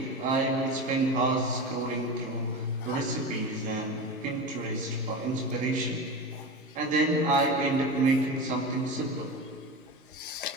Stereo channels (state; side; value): normal; both; correlation 0.26